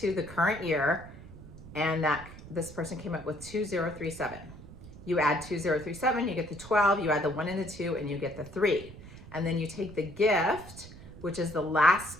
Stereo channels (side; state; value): right; noise; rumble, 16 dB below the sound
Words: the current year. And this person came up with 2037. You add 2037, you get the 12, you add the 1 and the 2, and you get the 3. And then you take the gift, which is the last